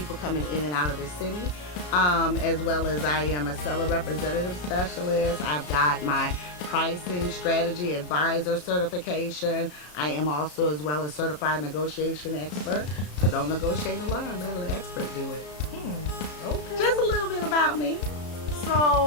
coming in and out of the city, as well as I am a seller representative specialist. I've got my pricing strategy advisor certification. I am also as well as certified negotiation expert. So don't negotiate alone, let an expert do it. Okay. Just a little bit about me.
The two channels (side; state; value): right; late; 33 ms